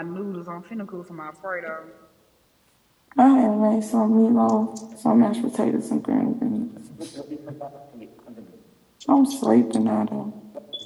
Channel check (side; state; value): both; identical; correlation 1.00